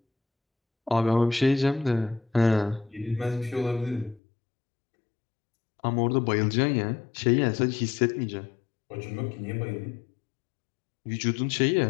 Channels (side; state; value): right; drops out; at 4.2 s